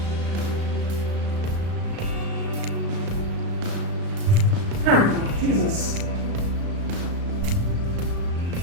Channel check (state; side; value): late; left; 35 ms